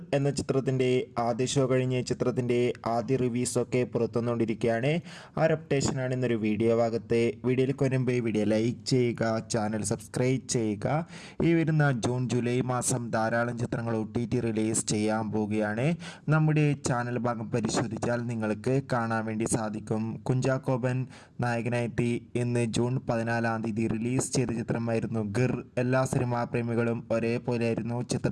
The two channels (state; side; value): identical; both; correlation 1.00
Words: എന്ന ചിത്രത്തിൻ്റെ ആദ്യ ഷോ കഴിഞ്ഞ് ചിത്രത്തിൻ്റെ ആദ്യ റിവ്യൂസൊക്കെ പുറത്തുവന്നുകൊണ്ടിരിക്കുകയാണ്. ആ ഒരു അപ്ഡേഷനാണ് ഇന്നൊരു വീഡിയോ ഭാഗത്ത്. വീഡിയോയിലേക്ക് വരുമ്പോൾ വീഡിയോ ലൈക്ക് ചെയ്യുക, ചാനൽ സബ്സ്ക്രൈബ് ചെയ്യുക. ഈ വരുന്ന ജൂൺ ജൂലൈ മാസം ധാരാളം ചിത്രങ്ങൾ OTT റിലീസ് ചെയ്യാൻ പോവുകയാണ്. നമ്മുടെ ചാനൽ ഭാഗം പരിശോധിച്ചാൽ നിങ്ങൾക്ക് കാണാൻ വേണ്ടി സാധിക്കും. കുഞ്ചാക്കോബൻ നായകനായിട്ട് ഇന്ന് ജൂൺ 14 റിലീസ് ചെയ്ത ചിത്രമായിരുന്നു ഗിർ. എല്ലാ സിനിമാ പ്രേമികളും ഒരേപോലെയായിരുന്നു